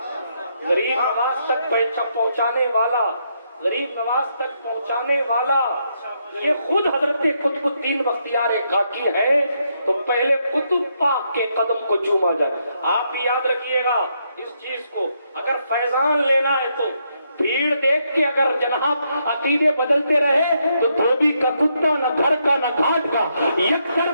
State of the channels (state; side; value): inverted; both; correlation -0.77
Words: غریب نواز تک پہنچانے والا، غریب نواز تک پہنچانے والا یہ خود حضرت قطب الدین بختیار کاکی ہے. تو پہلے قطب پاک کے قدم کو چوما جائے. آپ بھی یاد رکھیے گا اس چیز کو. اگر فیضان لینا ہے تو بھیڑ دیکھ کے اگر جناب عقیدے بدلتے رہے تو دھوبی کا کتا نہ گھر کا نہ گھاٹ کا، یکسر